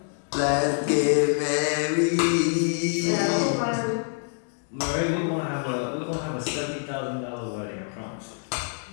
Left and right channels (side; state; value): right; silent; 61 dB below the other